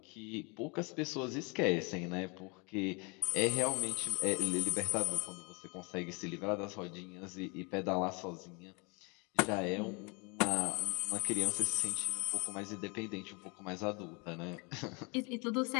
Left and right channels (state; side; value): quieter; right; 31.2 dB